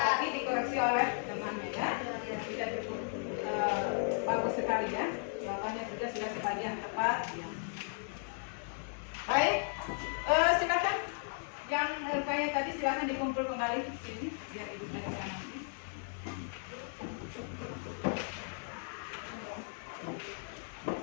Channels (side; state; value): right; silent; 54 dB below the other